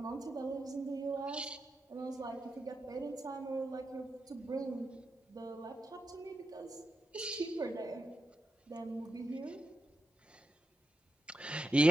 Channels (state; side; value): normal; both; correlation 0.87